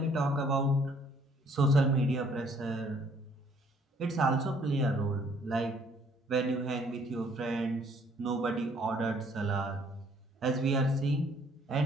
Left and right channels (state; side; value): normal; both; correlation 0.62